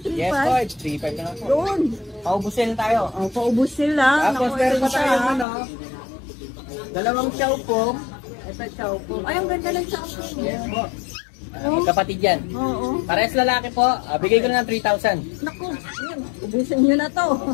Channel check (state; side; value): drops out; right; at 5.5 s